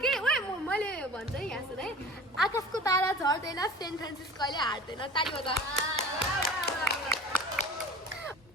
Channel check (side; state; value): both; normal; correlation 0.40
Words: के ओए मैले भन्छ है यहाँ सुन है आकाशको तारा झर्दैन सेन्ट फ्रान्सिस्को अहिले हार्दैन ताली बजा